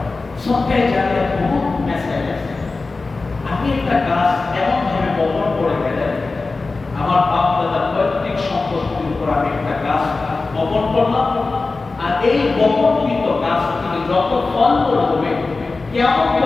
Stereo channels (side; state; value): right; quieter; 3.7 dB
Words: সদকায়ে জারিয়া বহুত মেসেজ আছে। আপনি একটা গাছ এমন ভাবে বপন করে গেলেন, আমার বাপ দাদার পৈতৃক সম্পত্তির উপর আমি একটা গাছ বপন করলাম, আর এই বপনকৃত গাছ থেকে যত ফল হবে, কিয়ামত